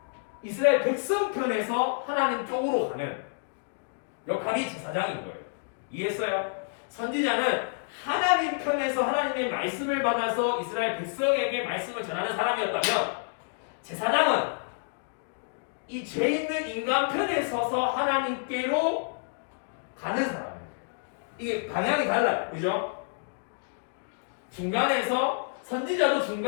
이스라엘 백성 편에서 하나님 쪽으로 가는 역할이 제사장인 거예요. 이해했어요? 선지자는 하나님 편에서 하나님의 말씀을 받아서 이스라엘 백성에게 말씀을 전하는 사람이었다면, 제사장은 이 죄 있는 인간 편에 서서 하나님께로 가는 사람이에요. 이게 방향이 달라요. 그죠? 중간에서 선지자도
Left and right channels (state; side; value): silent; right; digital silence